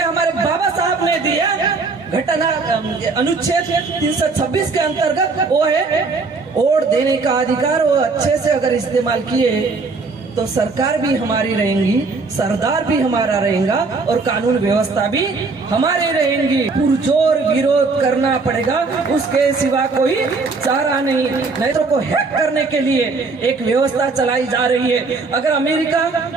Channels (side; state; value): left; quieter; 4.1 dB